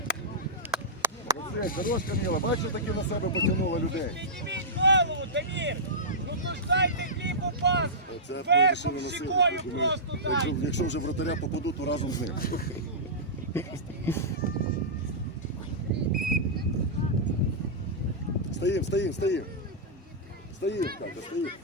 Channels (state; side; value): normal; both; correlation -0.14